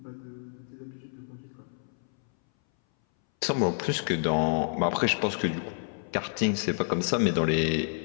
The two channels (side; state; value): right; silent; 59 dB below the other